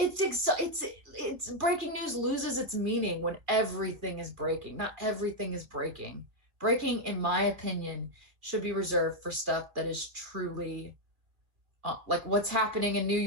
breaking news loses its meaning when everything is breaking. Not everything is breaking. Breaking, in my opinion, should be reserved for stuff that is truly like what's happening in New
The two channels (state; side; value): late; left; 2.2 ms